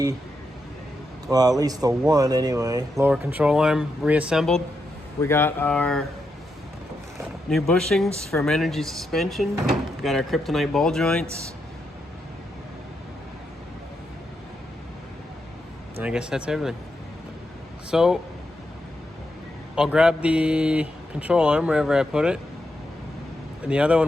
well, at least the one anyway, lower control arm reassembled. We got our new bushings from Energy Suspension. We got our Kryptonite ball joints. And I guess that's everything. So I'll grab the control arm wherever I put it. And the other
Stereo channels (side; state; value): both; normal; correlation 0.84